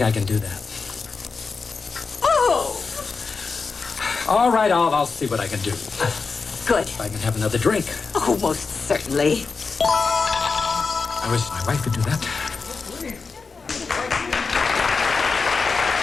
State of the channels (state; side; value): quieter; right; 4.7 dB